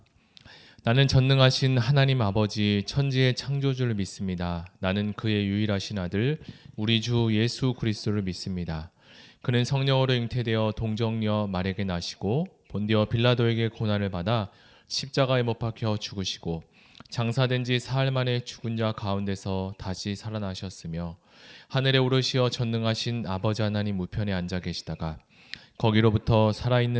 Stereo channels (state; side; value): identical; both; correlation 1.00